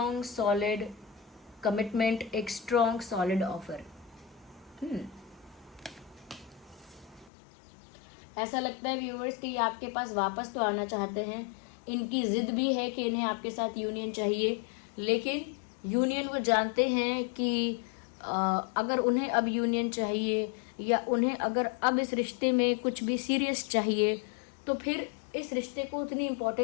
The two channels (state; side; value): drops out; right; at 7.3 s